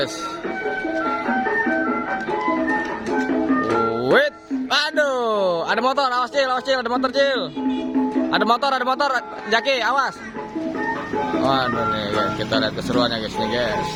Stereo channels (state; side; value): identical; both; correlation 1.00